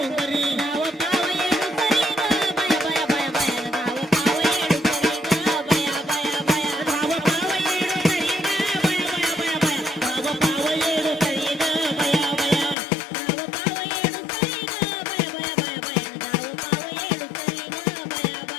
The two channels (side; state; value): right; drops out; at 12.8 s